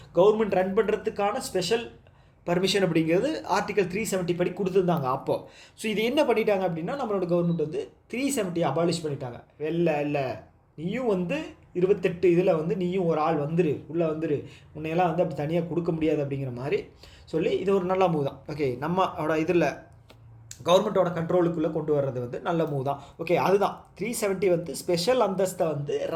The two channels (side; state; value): both; identical; correlation 1.00